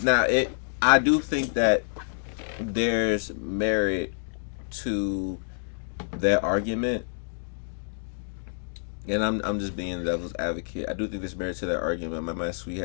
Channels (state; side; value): silent; right; digital silence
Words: do think that there's merit to that argument. And I'm just being the devil's advocate. I do think there's merit to that argument. My man Sweet